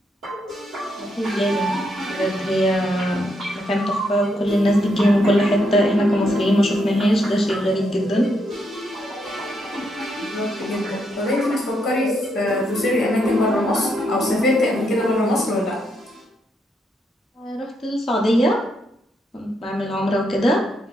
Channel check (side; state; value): both; normal; correlation 0.78